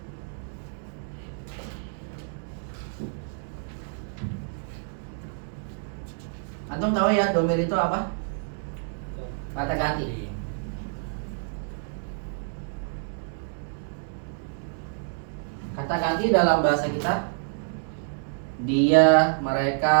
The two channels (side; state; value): left; silent; digital silence